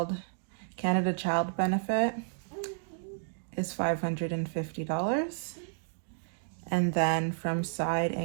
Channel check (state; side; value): silent; left; digital silence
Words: Canada Child Benefit is $550. And then from side